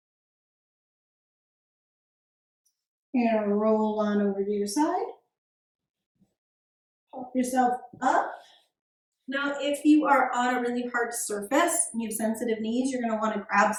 You're gonna roll on over to your side. Pop yourself up. Now, if you are on a really hard surface and you have sensitive knees, you're gonna wanna grab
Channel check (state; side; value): identical; both; correlation 1.00